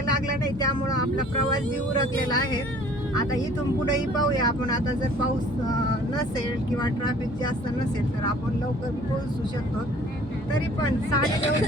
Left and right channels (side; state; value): both; normal; correlation 0.53